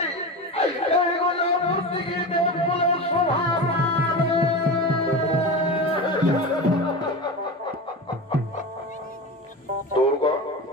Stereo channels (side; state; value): both; normal; correlation 0.25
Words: এই গোদা মূর্তি কি দেব বলে স্বভাব। দুর্গা